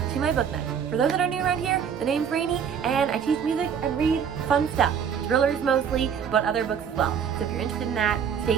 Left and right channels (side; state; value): left; quieter; 7.6 dB